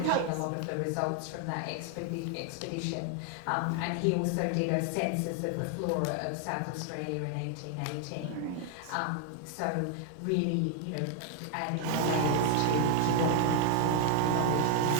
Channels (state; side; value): different; both; correlation 0.00